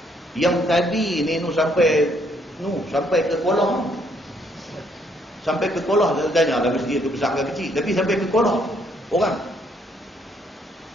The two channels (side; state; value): both; normal; correlation 0.69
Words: Yang tadi ni sampai ke Kolah. Sampai ke Kolah, saya tanya lah masjid tu besar ke kecil, tapi sampai ke Kolah orang.